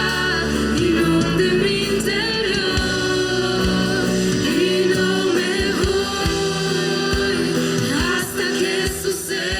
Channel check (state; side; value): identical; both; correlation 1.00